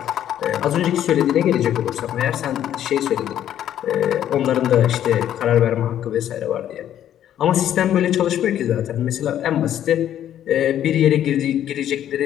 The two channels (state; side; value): quieter; right; 11.0 dB